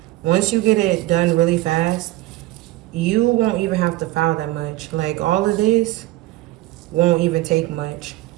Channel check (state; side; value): quieter; left; 17.6 dB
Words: Once you get it done really fast, you won't even have to file that much. Like all of this won't even take much